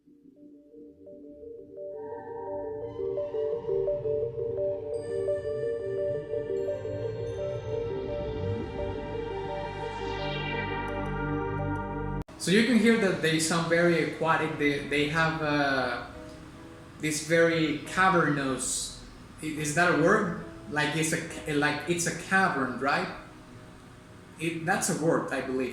So you can hear that they sound very aquatic. They have this very cavernous. Is that a word? Like it's a cavern, right? That's a word, I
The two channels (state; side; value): identical; both; correlation 1.00